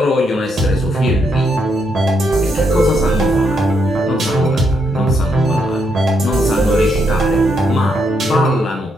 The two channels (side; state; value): both; normal; correlation 0.77